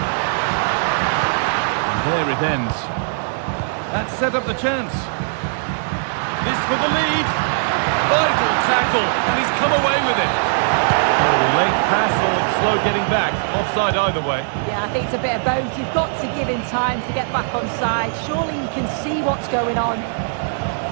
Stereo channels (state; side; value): silent; left; digital silence